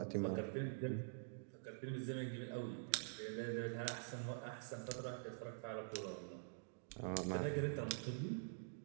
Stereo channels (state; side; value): silent; left; digital silence